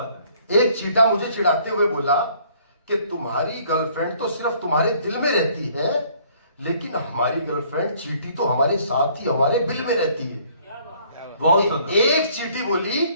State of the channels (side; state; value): both; inverted; correlation -0.60